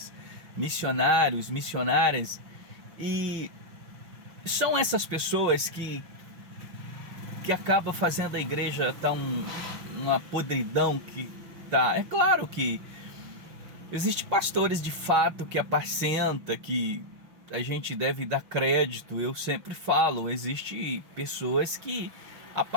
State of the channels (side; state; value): left; late; 6.0 ms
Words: missionários, missionárias. E são essas pessoas que acabam fazendo a igreja estar uma podridão que tá. É claro que existem pastores de fato que apacenta, que a gente deve dar crédito. Eu sempre falo, existe pessoas que